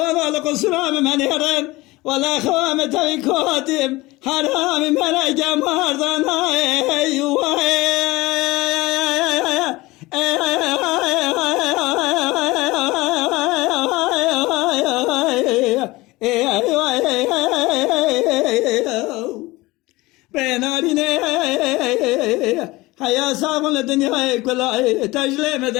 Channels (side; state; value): right; quieter; 20.7 dB